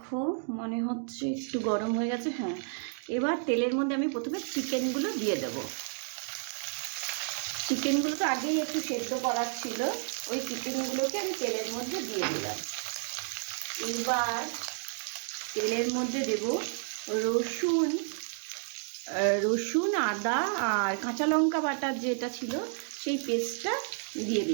মনে হচ্ছে একটু গরম হয়ে গেছে। হ্যাঁ, এবার তেলের মধ্যে আমি প্রথমে চিকেনগুলো দিয়ে দেবো। চিকেনগুলোকে আগেই একটু সেদ্ধ করার ছিল, ওই চিকেনগুলোকে আমি তেলের মধ্যে দিয়ে দিলাম। এবার তেলের মধ্যে দেব রসুন, আদা আর কাঁচা লঙ্কা বাটার যেটা ছিল সেই পেস্টটা দিয়ে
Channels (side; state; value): left; silent; 57 dB below the other